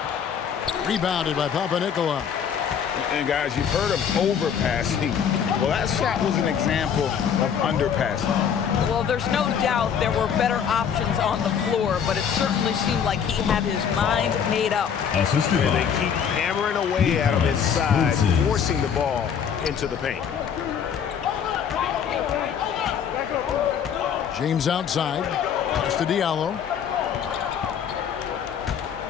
Rebounded by Papanikolaou. And guys, you've heard of overpassing. Well, that shot was an example of underpassing. Well, there's no doubt there were better options on the floor, but it certainly seemed like he had his mind made up. Assisted And by they keep hammering away at him inside, forcing the ball into the paint. James outside. Pass to Diallo.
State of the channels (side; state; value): right; quieter; 7.7 dB